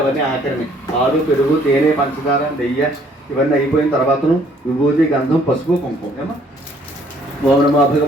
ఆఖరిని పాలు పెరుగు తేనె పంచదార నెయ్యి ఇవన్నీ అయిపోయిన తర్వాతను విభూతి గంధం పసుపు కుంకుమ ఏమా ఓం నమో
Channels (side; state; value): both; normal; correlation 0.62